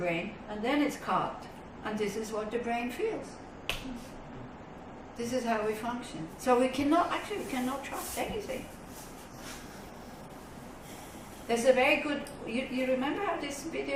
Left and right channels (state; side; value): identical; both; correlation 1.00